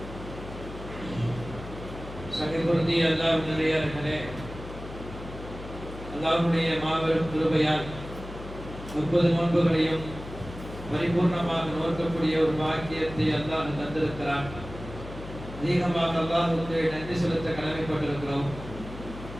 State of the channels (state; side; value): noise; left; hum, 12 dB below the sound